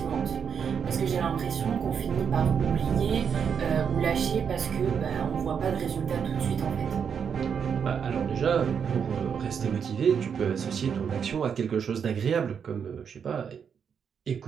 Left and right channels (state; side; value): quieter; left; 7.1 dB